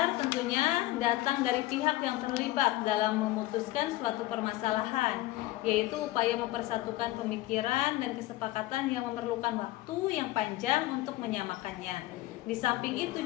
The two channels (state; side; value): quieter; right; 17.1 dB